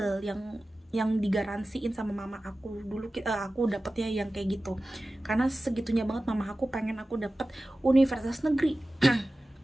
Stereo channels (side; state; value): both; normal; correlation 0.96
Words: yang digaransiin sama mama aku dulu. Aku dapetnya yang kayak gitu karena segitunya banget mama aku pengen aku dapet universitas negeri.